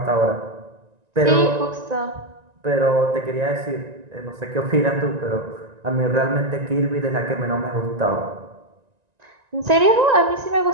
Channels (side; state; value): left; late; 1.9 ms